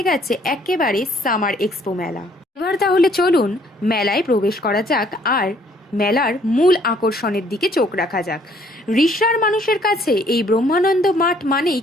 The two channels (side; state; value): both; normal; correlation 0.62